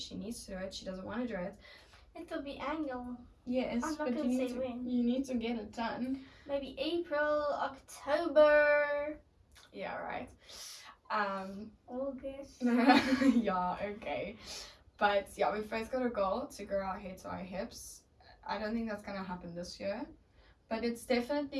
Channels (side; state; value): both; identical; correlation 1.00